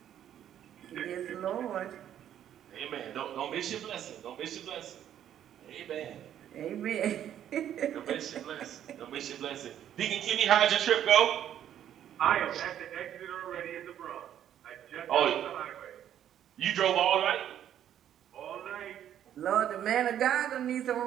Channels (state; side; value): quieter; left; 10.5 dB